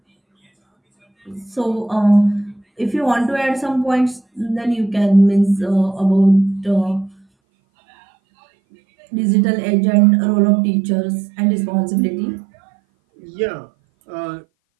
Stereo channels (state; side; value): drops out; left; at 7.2 s